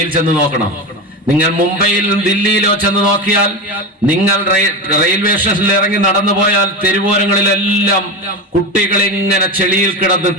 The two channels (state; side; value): normal; both; correlation 0.21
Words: ചെന്ന് നോക്കണം. നിങ്ങൾ മുംബൈയിലും ദില്ലിയിലോ ചെന്ന് നോക്കിയാൽ, നിങ്ങൾ റെയിൽവേ സ്റ്റേഷനിൽ ഇറങ്ങി നടന്നു പോയാൽ തെരുവോരങ്ങളിലെല്ലാം കുട്ടികൾ ഇങ്ങനെ ചെളിയിൽ കിടന്ന്